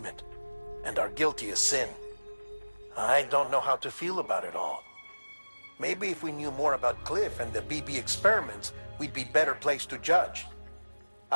and our guiltiest sin. I don't know how to feel about it all. Maybe if we knew more about Cliff and the BB experiments, we'd be better placed to judge.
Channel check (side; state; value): both; inverted; correlation -1.00